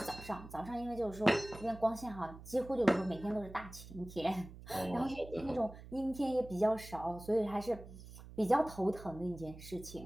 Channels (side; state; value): right; noise; hum, 15 dB below the sound